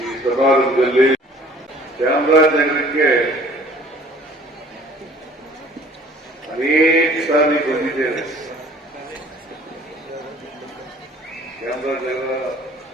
ಸಮಾರಂಭದಲ್ಲಿ ಚಾಮರಾಜನಗರಕ್ಕೆ ಅನೇಕ ಸಾರಿ ಬಂದಿದ್ದೇನೆ. ಚಾಮರಾಜನಗರ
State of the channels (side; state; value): both; normal; correlation 0.52